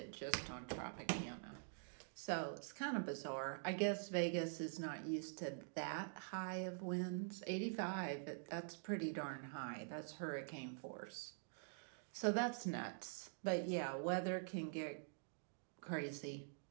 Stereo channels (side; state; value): left; silent; digital silence